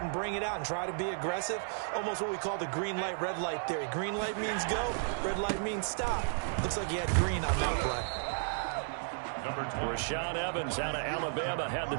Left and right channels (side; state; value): left; silent; digital silence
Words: and bring it out and try to be aggressive, almost what we call the green light, red light theory. Green light means go, red light means stop. Looks like he had green on that play. Rashaan Evans out of Alabama had the